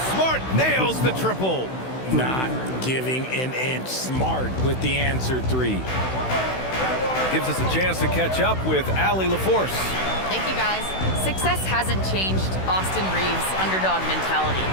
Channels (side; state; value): right; late; 16 ms